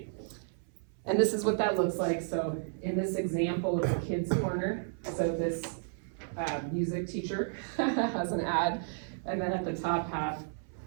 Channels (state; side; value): silent; left; 56 dB below the other